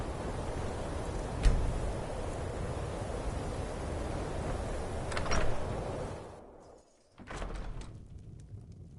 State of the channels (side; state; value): both; identical; correlation 1.00